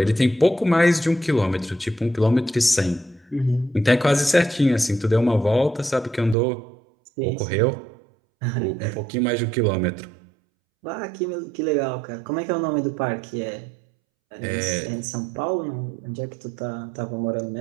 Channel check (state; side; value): drops out; left; at 6.4 s